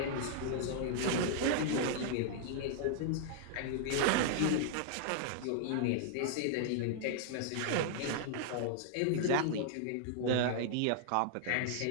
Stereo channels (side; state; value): both; different; correlation -0.01